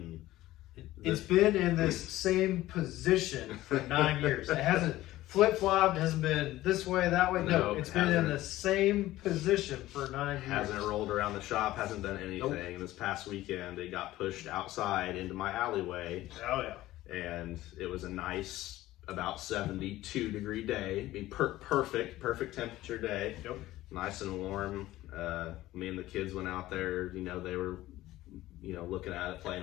it's been in this same position for 9 years. It hasn't flip-flopped, hasn't been this way, that way. No, it's been in the same position for 9 years. Hasn't rolled around the shop, hasn't done anything. Nope. This past weekend, it got pushed outside into my alleyway. Oh, yeah. And it was a nice, about 72-degree day. I mean, perfect temperature day. Yep. Nice and warm. Me and the kids went out there. They were, looking at it,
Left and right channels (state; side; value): quieter; right; 16.0 dB